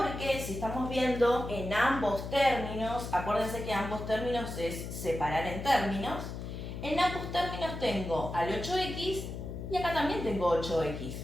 si estamos viendo en ambos términos, acuérdense que ambos términos es separar en términos, en ambos términos tengo al 8x y acá también tengo 8x.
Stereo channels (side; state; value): left; noise; hum, 7 dB below the sound